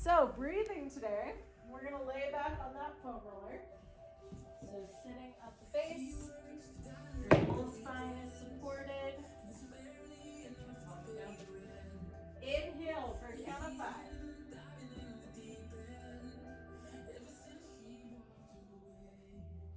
breathing today, we're gonna lay back on that foam roller. So sitting at the base, your whole spine is supported. Inhale for a count of 5.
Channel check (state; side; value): identical; both; correlation 1.00